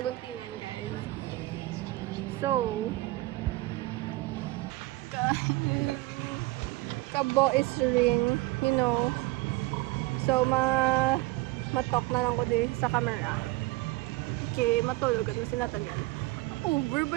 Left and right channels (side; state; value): left; quieter; 20.6 dB